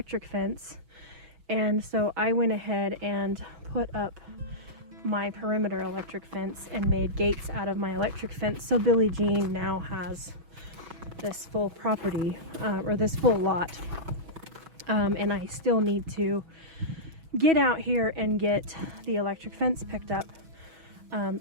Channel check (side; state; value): left; late; 6.2 ms